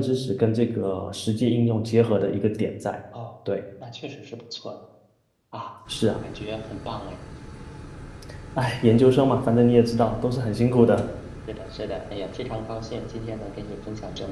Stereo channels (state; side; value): identical; both; correlation 1.00